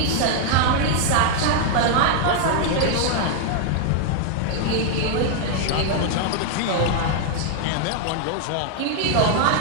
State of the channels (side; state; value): both; different; correlation 0.00